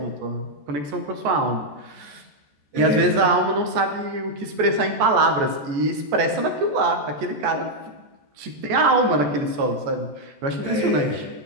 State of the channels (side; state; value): left; late; 14 ms